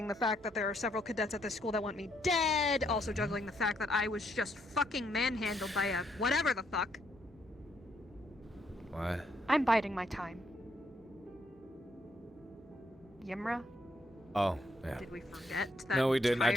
the fact that there are several cadets at this school that want me dead. Also juggling the fact that I was just fucking manhandled by a whatever the fuck. What? I'm biding my time. Yimra? Oh, yeah. Did we forget that? No, we didn't. I entire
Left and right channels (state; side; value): normal; both; correlation 0.74